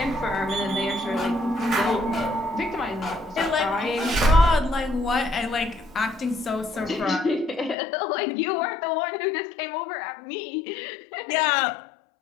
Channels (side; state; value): right; drops out; at 7.8 s